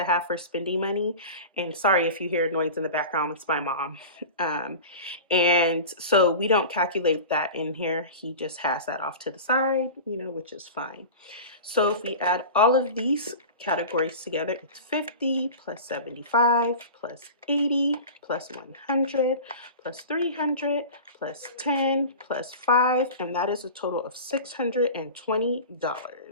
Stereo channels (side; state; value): both; inverted; correlation -0.33